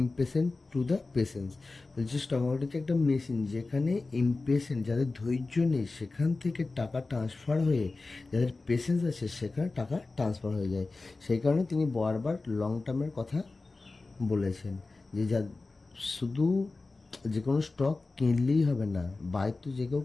to the patience. বলছে স্টক মার্কেট হচ্ছে একটা মেশিন, যেখানে ইমপেশেন্ট, যাদের ধৈর্য নেই, সেখান থেকে টাকা ট্রান্সফার হয়ে যাদের পেশেন্স আছে সেখানে টাকা ট্রান্সফার হয়ে যায়। সেই কারণে তিনি বারবার লং টার্মের কথা বলেছেন, যে শুধু যে কোনো স্টক কিনলেই হবে না, বাই তো যে কেউ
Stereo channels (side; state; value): right; quieter; 3.6 dB